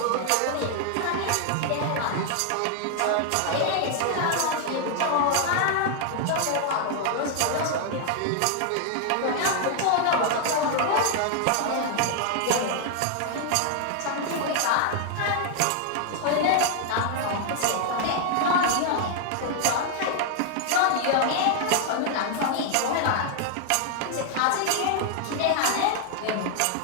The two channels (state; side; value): different; both; correlation 0.00